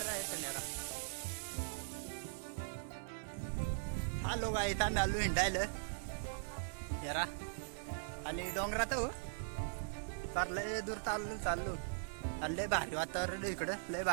आहे त्याला आलो काय इथं आलो हिंडायला जरा आणि डोंगरात हो फार लय दूर चाललो आणि लय भारी वातावरण इकडं लय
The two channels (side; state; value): left; silent; digital silence